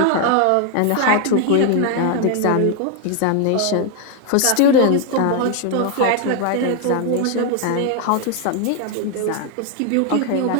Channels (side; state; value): both; different; correlation 0.01